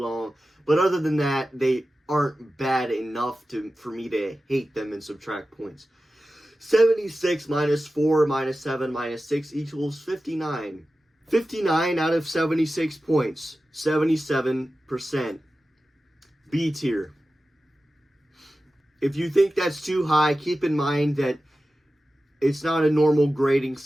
but other than that, they aren't bad enough for me to hate them and subtract points. 76 minus 4 minus 7 minus 6 equals 59. 59 out of 76 points. 77%. B tier. If you think that's too high, keep in mind that it's not a normal grading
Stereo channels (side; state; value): both; normal; correlation 0.94